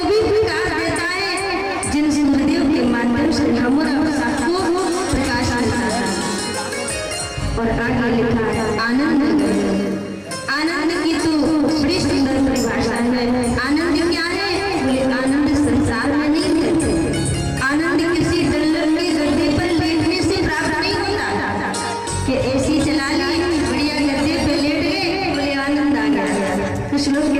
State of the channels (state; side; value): identical; both; correlation 1.00